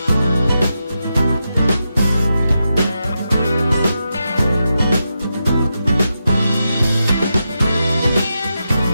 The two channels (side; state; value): both; inverted; correlation -0.87